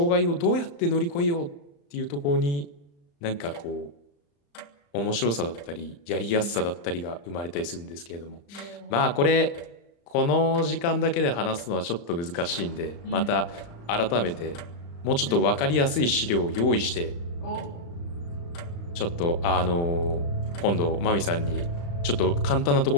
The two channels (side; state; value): right; late; 35 ms